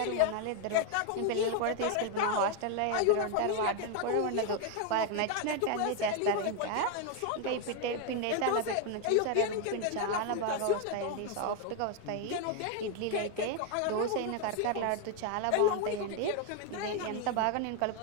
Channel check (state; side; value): different; both; correlation 0.01